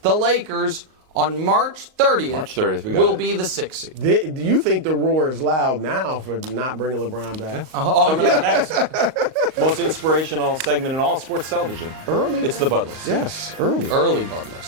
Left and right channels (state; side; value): late; left; 38 ms